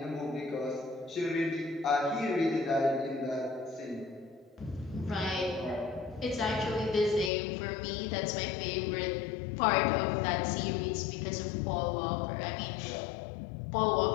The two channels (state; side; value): drops out; right; at 7.3 s